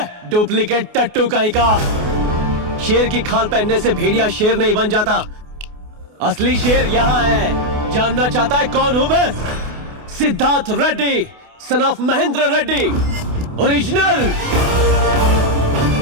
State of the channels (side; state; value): left; late; 28 ms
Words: डुप्लीकेट टट्टू कहीं का। शेर की खाल पहनने से भेड़िया शेर नहीं बन जाता। असली शेर यहाँ है। जानना चाहता है कौन हूं मैं? Siddharth Reddy, son of Mahendra Reddy, original.